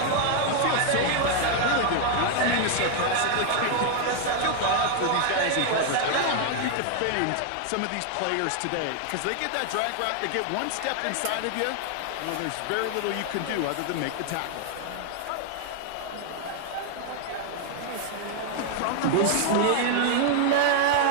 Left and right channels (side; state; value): both; different; correlation 0.00